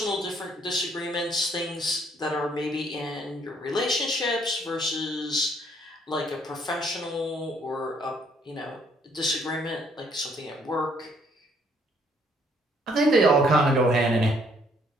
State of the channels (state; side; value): normal; both; correlation 0.66